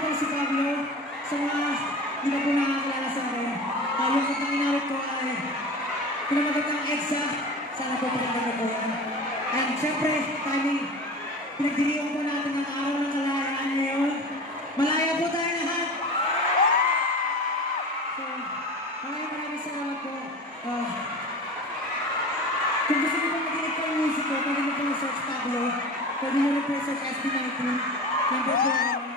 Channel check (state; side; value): normal; both; correlation 0.33